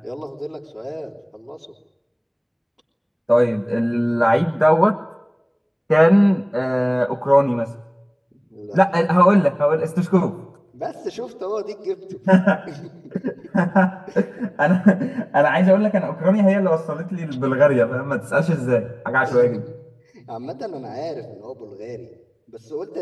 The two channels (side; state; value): both; identical; correlation 1.00